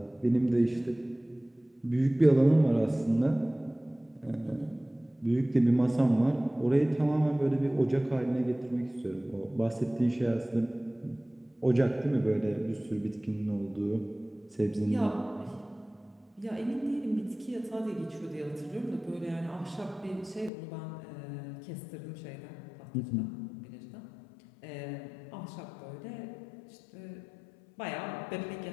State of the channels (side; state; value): right; drops out; at 20.5 s